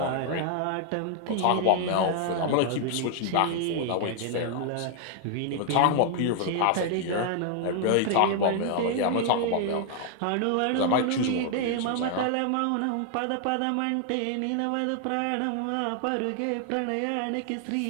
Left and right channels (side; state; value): both; different; correlation 0.00